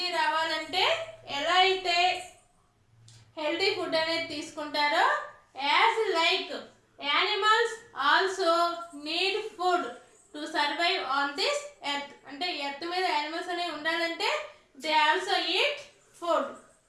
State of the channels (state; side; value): identical; both; correlation 1.00